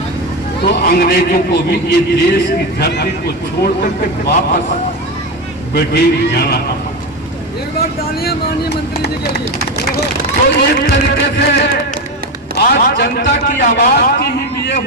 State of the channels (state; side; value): normal; both; correlation 0.16